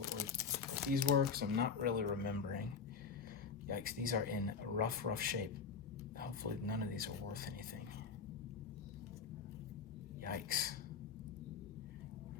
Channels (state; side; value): quieter; right; 5.8 dB